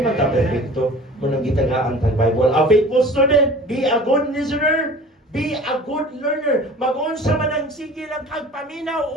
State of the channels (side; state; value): both; normal; correlation 0.43